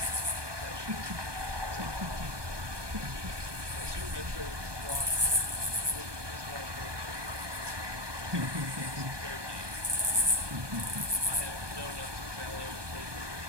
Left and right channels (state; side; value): late; left; 1.2 ms